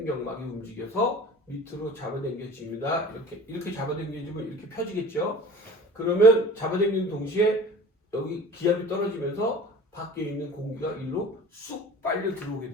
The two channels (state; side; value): normal; both; correlation 0.41